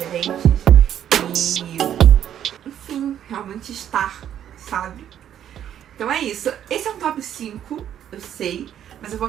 enfim, realmente estar, sabe? Então é isso. Esse é um top 5, eu sei, mas eu vou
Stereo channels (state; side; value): quieter; left; 10.2 dB